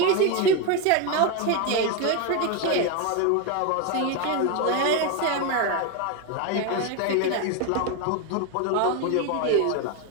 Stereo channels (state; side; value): different; both; correlation 0.02